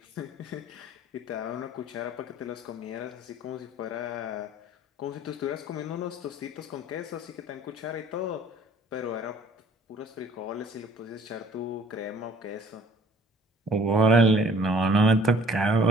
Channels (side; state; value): both; normal; correlation 0.54